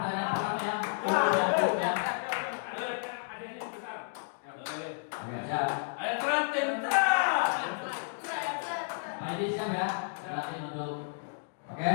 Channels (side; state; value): right; silent; digital silence